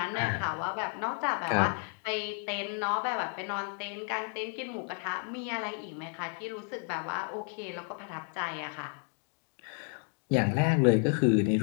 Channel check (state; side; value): quieter; right; 39.0 dB